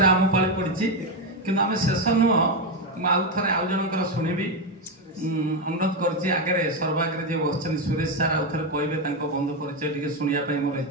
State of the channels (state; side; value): normal; both; correlation 0.08